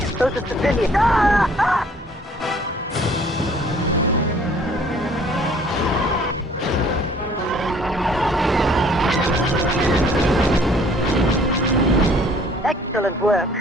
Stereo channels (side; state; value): both; normal; correlation 0.56